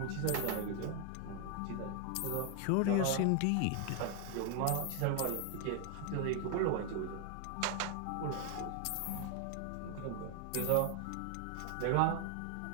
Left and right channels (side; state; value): both; different; correlation 0.00